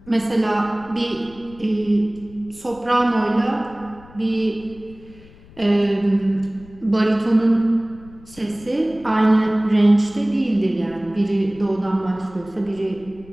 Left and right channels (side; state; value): left; noise; rumble, 23 dB below the sound